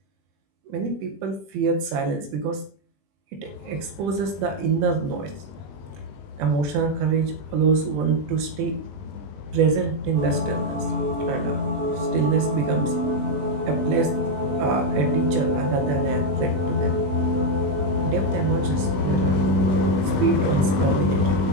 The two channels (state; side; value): late; left; 21 ms